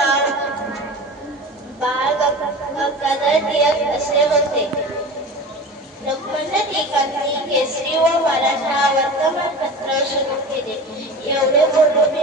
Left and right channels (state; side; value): normal; both; correlation 0.33